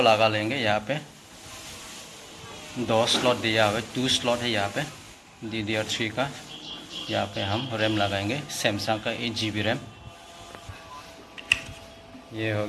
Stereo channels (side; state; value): both; identical; correlation 1.00